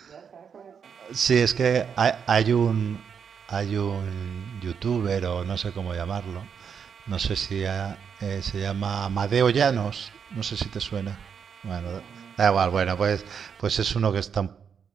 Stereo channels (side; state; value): left; quieter; 7.0 dB